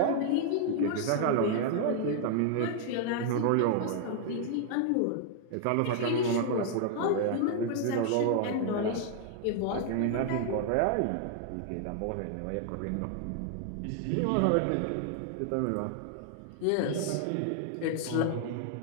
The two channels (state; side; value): different; both; correlation 0.00